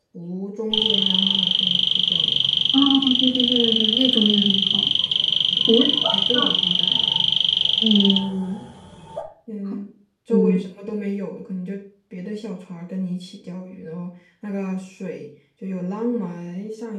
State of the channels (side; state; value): both; identical; correlation 1.00